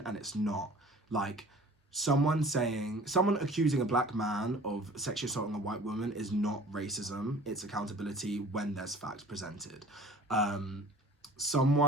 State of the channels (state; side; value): normal; both; correlation 0.46